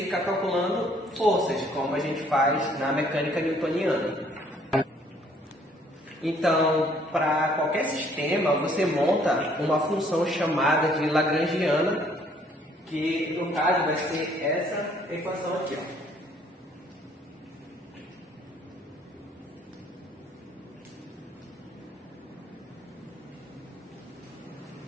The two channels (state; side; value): normal; both; correlation 0.62